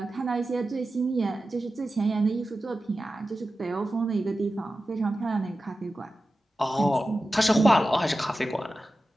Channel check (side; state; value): both; normal; correlation 0.94